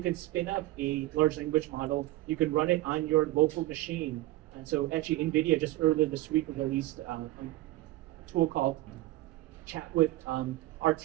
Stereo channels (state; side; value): quieter; left; 16.9 dB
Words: can spin up a large language model, you can run it on your local machine. And so actually NVIDIA just earlier this week released a tool called Chat with